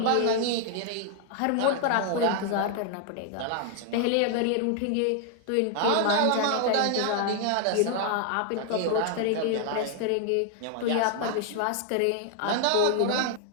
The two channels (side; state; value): both; different; correlation 0.00